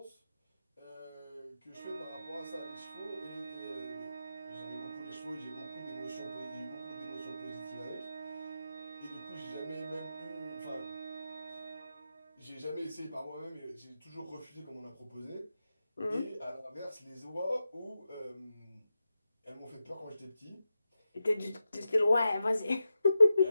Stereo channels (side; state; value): both; inverted; correlation -0.90